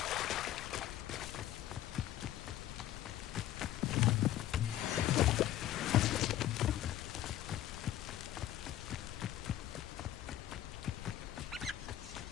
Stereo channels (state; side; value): quieter; right; 12.8 dB